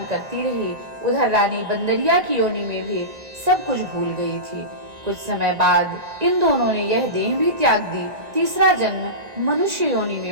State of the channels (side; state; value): left; late; 1.9 ms